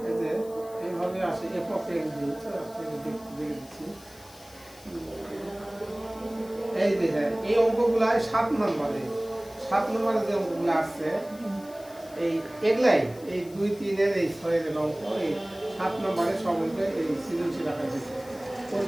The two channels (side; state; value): left; noise; hiss, 22 dB below the sound